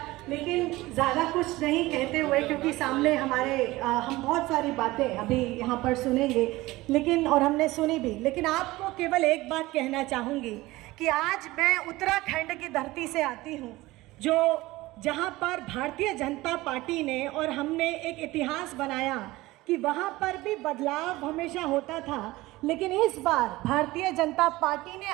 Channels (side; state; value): left; quieter; 19.1 dB